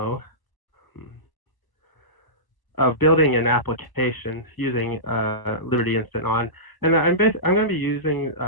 of building an application using Liberty InstantOn. And I'm going to be using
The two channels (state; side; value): late; right; 1.0 ms